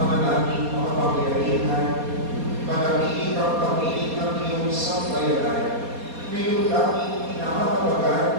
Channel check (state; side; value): late; left; 4.2 ms